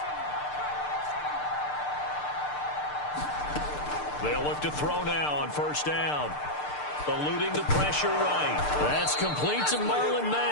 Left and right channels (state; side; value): late; right; 6.7 ms